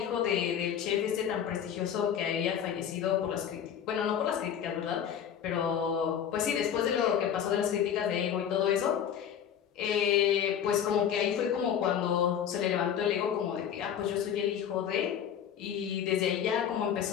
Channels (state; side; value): quieter; right; 8.9 dB